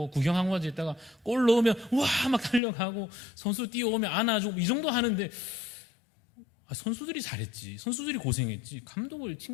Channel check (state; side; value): drops out; right; at 2.6 s